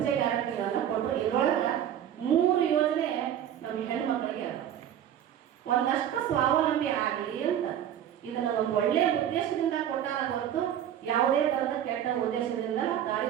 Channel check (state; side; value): quieter; left; 10.3 dB